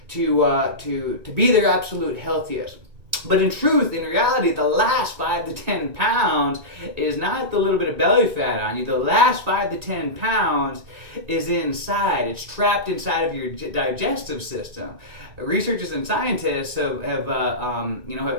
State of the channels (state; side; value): late; left; 1.8 ms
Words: to be their absolute healthiest. But in reality, the last 5 to 10 pounds is not the little bit of belly fat on you. The last 5 to 10 pounds is inside. It's trapped inside of your digestive system. Researchers and scientists have